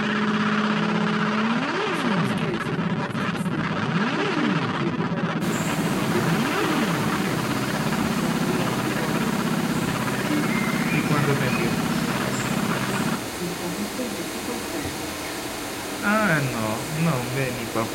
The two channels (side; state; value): both; identical; correlation 1.00